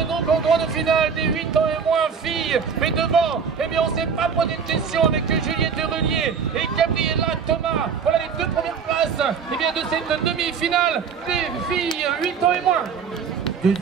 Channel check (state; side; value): quieter; left; 6.4 dB